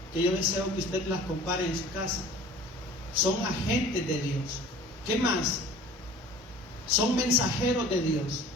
que yo deseo que usted las compare en su casa. Son agentes de Dios. ¿Qué más? Son mensajeros de Dios.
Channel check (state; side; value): normal; both; correlation 0.46